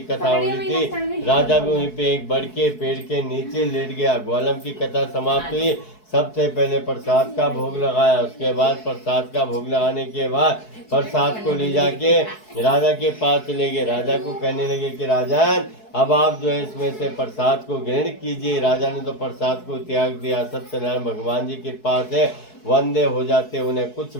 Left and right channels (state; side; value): late; right; 4.7 ms